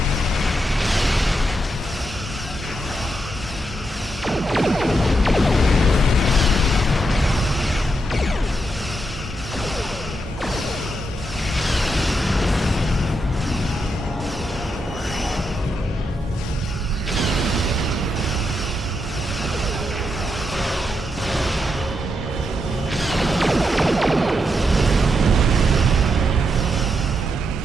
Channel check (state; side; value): normal; both; correlation 0.82